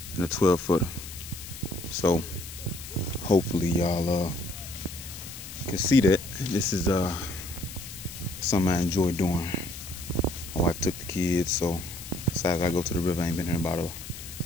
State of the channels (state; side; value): noise; left; hiss, 12 dB below the sound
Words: and a 12-footer. So hopefully y'all can see that. This is something I enjoy doing. My wife took the kids, so decided I go to the river. I ain't been here in about